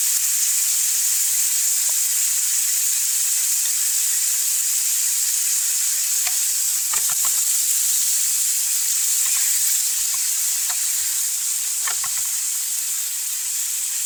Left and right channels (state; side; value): identical; both; correlation 1.00